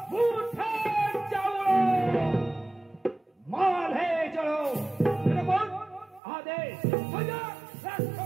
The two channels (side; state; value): left; drops out; at 6.2 s